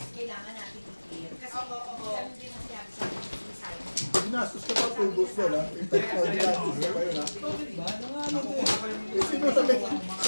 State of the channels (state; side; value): inverted; both; correlation -1.00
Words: kailangan natin i-clear. Kasi ganun din ang sinabi sa akin ni Simon. Ginastos ka pa 2 boss yun ha? In fact, ginastos ka pa yun ha? Eh, sino sabay